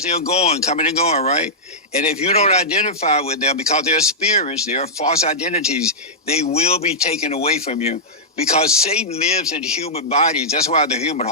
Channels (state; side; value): normal; both; correlation -0.11